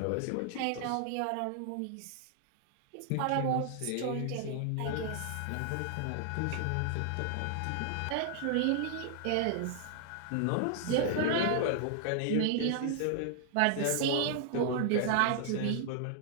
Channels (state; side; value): different; both; correlation 0.00